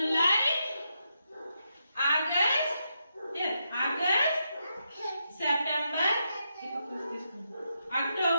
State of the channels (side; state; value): both; inverted; correlation -0.83